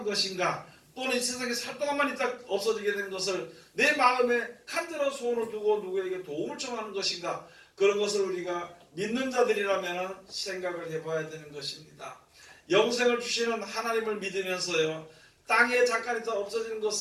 것인가, 또는 이 세상에 살 동안만 있다 없어지게 되는 것을 내 마음에 간절한 소원을 두고 누구에게 도움을 청하는 것인가, 그런 것을 우리가 믿는 자들이라면 생각을 해봐야 되는 것입니다. 영생을 주시는 하나님을 믿으면서요, 땅에 잠깐 있다 없어지는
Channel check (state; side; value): identical; both; correlation 1.00